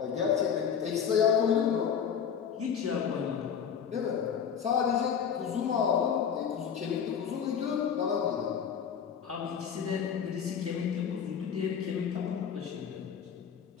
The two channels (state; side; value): quieter; right; 7.6 dB